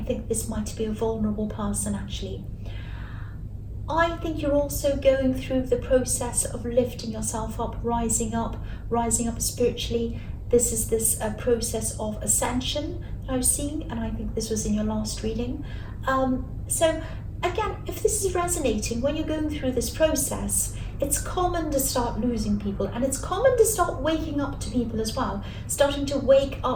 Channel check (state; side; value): identical; both; correlation 1.00